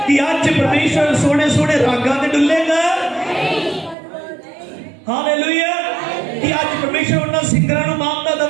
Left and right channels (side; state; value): left; drops out; at 4.0 s